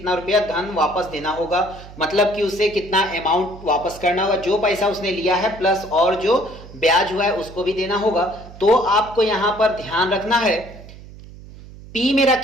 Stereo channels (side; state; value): right; noise; hum, 17 dB below the sound